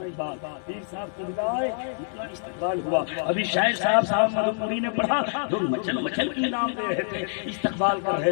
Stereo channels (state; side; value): silent; right; digital silence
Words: پیر صاحب کو ملا ہے, اتنا استقبال ہوا. ابھی شاعر صاحب مدنپوری نے پڑھا, لوگ مچل مچل کے انعام دے رہے تھے, استقبال کر رہے